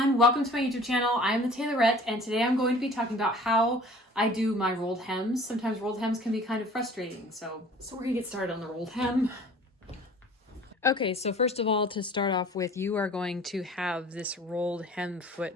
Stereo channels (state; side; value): normal; both; correlation 0.48